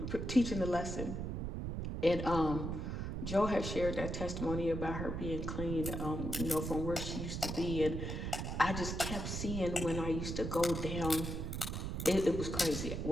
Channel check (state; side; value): noise; right; rumble, 4 dB below the sound